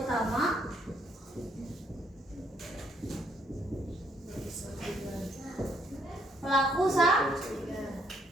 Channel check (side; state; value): both; normal; correlation 0.69